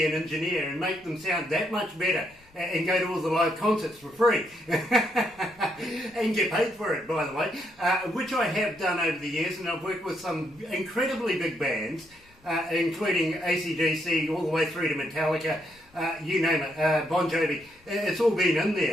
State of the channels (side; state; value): left; noise; rumble, 29 dB below the sound